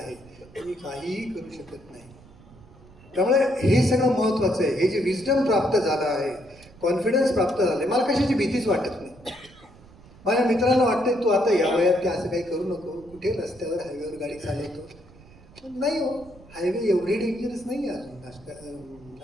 तुम्ही काहीही करू शकत नाही. त्यामुळे हे सगळं महत्वाचं आहे. हे जे विजडम प्राप्त झालं आहे, कॉन्फिडन्स प्राप्त झालं आहे, मला कशाची भीतीच वाटत नाही. माझ्या मित्रांना वाटतंय तू आता या वयात की असं काही करू नको, कुठे रस्त्यावर हायवेवर गाडी चालवतो. पण नाही हो, हायवे एवढे डेंजरस नाही आहे अजून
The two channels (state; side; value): noise; right; rumble, 23 dB below the sound